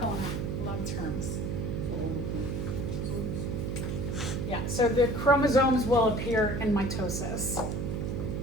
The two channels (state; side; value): noise; right; hum, 2 dB below the sound